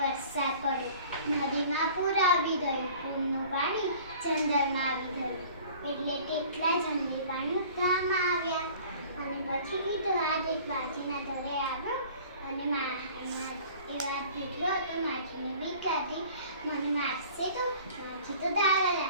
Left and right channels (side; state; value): both; inverted; correlation -0.47